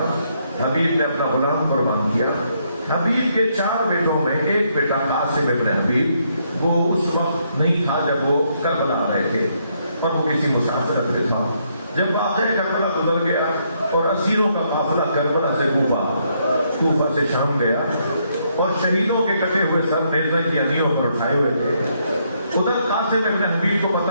حبیب نے اپنا غلام قربان کیا۔ حبیب کے 4 بیٹوں میں ایک بیٹا قاسم ابن حبیب، وہ اس وقت نہیں تھا جب وہ کربلا آ رہے تھے، اور وہ کسی مسافرت میں تھا۔ جب واقعہ کربلا گزر گیا اور اسیروں کا قافلہ کربلا سے کوفہ سے شام گیا، اور شہیدوں کے کٹے ہوئے سر نیزے کی انیوں پر اٹھائے ہوئے تھے، ادھر قاسم ابن حبیب کو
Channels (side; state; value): both; inverted; correlation -0.74